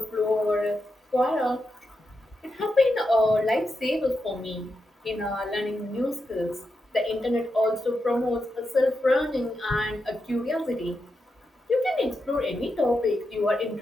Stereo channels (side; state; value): both; normal; correlation 0.86